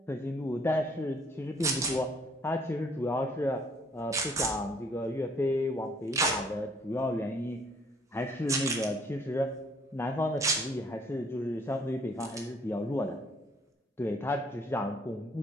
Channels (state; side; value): normal; both; correlation 0.62